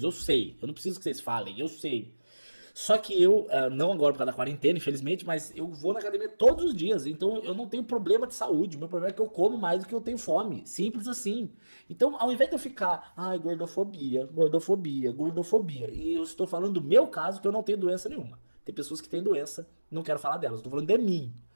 eu sei, eu não preciso que vocês falem, eu sei. Só que eu, não agora por causa da quarentena, infelizmente, mas eu vou na academia todos os dias, então eu não tenho problema de saúde, o meu problema é que eu como mais do que eu tenho fome, simples assim. Então, ao invés de eu ficar, ai, gordofobia, gordofobia, gordofobia, e eu estou falando do meu caso, que eu não tenho doença nenhuma. Tem pessoas que têm doença, não quero falar delas, estou falando de mim.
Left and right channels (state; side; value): inverted; both; correlation -1.00